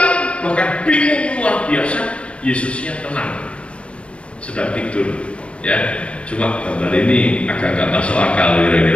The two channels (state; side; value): late; right; 0.060 ms